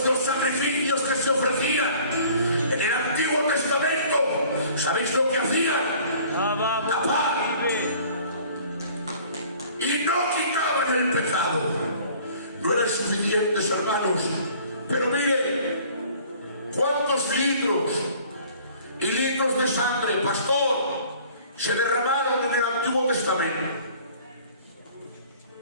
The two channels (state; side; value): inverted; both; correlation -0.51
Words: los sacrificios que se ofrecían en el Antiguo Testamento, ¿sabéis lo que hacían? Tapar. Y no quitaban el pecado. No eran suficientes, hermanos. Pero miren, ¿cuántos litros y litros de sangre, pastor, se derramaron en el Antiguo Testamento.